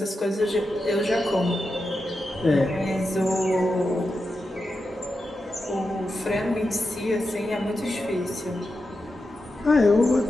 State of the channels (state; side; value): normal; both; correlation 0.89